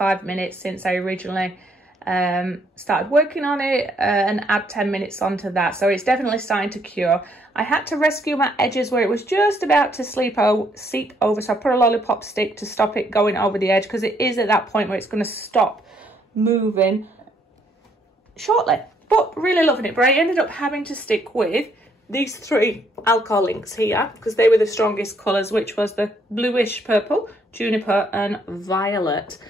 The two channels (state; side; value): normal; both; correlation 0.69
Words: minutes since I originally started working on it, and add 10 minutes onto that, so it's definitely starting to cure. I had to rescue my edges where it was just about to seep over, so I put a lollipop stick to stop it going over the edge, because it is at that point where it's going to stop moving shortly. But really loving it. But I ended up having to stick with these 3 alcohol inks here, because they were the strongest colours, which was the bluish purple, juniper and violet.